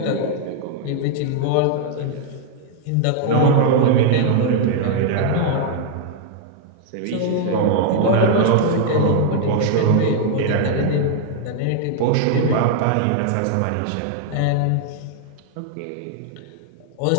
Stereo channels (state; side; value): different; both; correlation 0.00